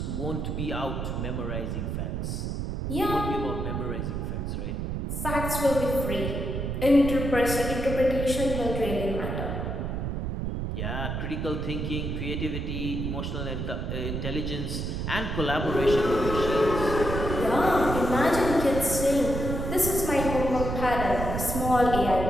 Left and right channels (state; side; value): noise; right; rumble, 3 dB below the sound